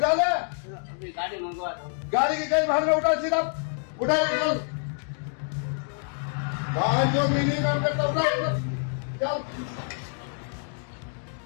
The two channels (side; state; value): right; silent; 60 dB below the other